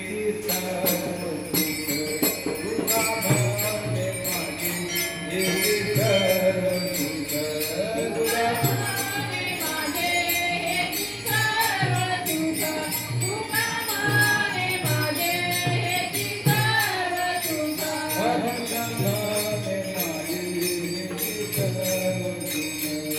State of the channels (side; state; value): both; identical; correlation 1.00